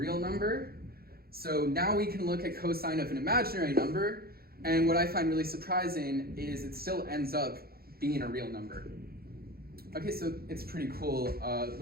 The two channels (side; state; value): left; late; 0.44 ms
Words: number. So now we can look at cosine of an imaginary number, and what I find really surprising is it still ends up being a real number. Okay, so it's pretty cool